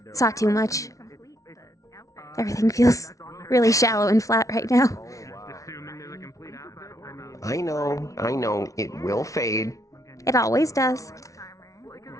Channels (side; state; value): right; late; 0.16 ms